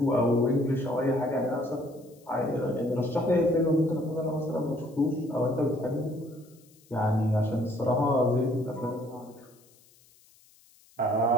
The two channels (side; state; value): left; noise; hiss, 29 dB below the sound